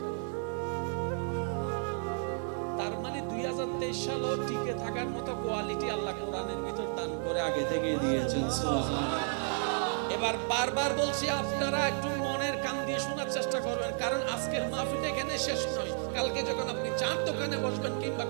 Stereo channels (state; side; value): silent; left; 56 dB below the other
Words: তার মানে 2023 সালও টিকে থাকার মতো কোয়ালিটি আল্লাহ কোরআনের ভিতর দান করে আগে থেকে দিয়েছেন। সুবহানাল্লাহ। এবার বারবার বলছি, আপনারা একটু মনের কান দিয়ে শোনার চেষ্টা করবেন, কারণ আজকের মাহফিল এখানে শেষ নয়। কালকে যখন আপনি চার দোকানে বসবেন কিংবা